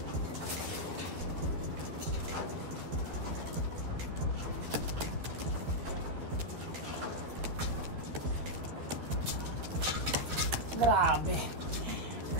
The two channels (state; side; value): late; left; 13 ms